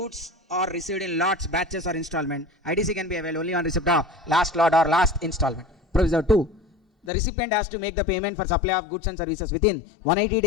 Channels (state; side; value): drops out; right; at 7.1 s